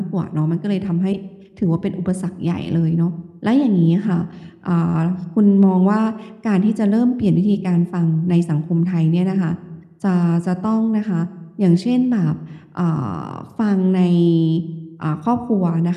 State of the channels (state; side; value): identical; both; correlation 1.00